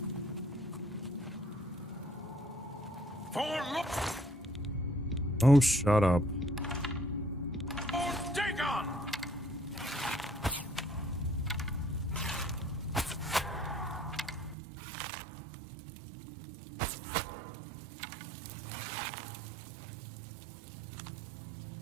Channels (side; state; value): left; drops out; at 14.6 s